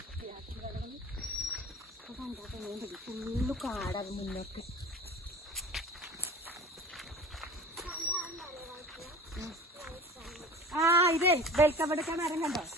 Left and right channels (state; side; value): normal; both; correlation 0.39